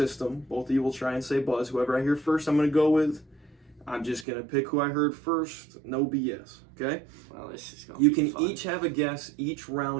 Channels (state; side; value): drops out; left; at 4.2 s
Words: Both of you will try and say buzz. Whoever I hear first, I'm going to go with. I'm just going to pick who I heard first. No BS. Okay? Well, this is going You to be can fun. each have a guess each